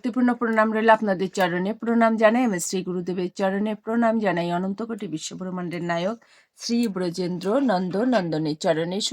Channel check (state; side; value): identical; both; correlation 1.00